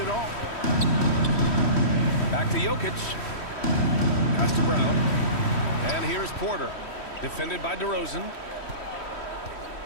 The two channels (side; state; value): right; late; 3.1 ms